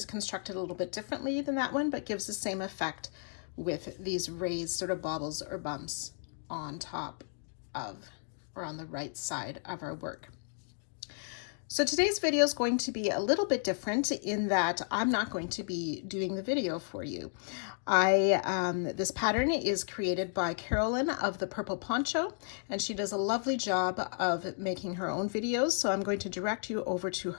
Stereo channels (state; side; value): silent; right; digital silence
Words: constructed a little bit differently than that one, but gives the same effect with these raised sort of baubles or bumps on top of or on the right side of our work. So today's video is going to be a little bit different in that I'm not going to be doing the video for you. This pattern is created by Carolyn of the Purple Poncho, and she does a lovely job of making her own videos. So I'm going to direct you over to